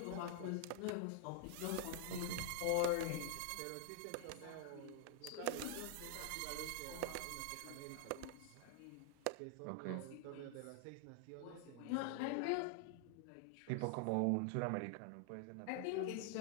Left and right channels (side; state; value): both; different; correlation 0.00